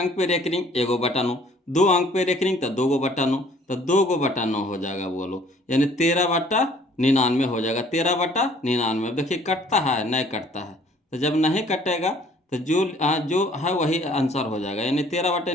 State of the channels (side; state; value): both; normal; correlation 0.57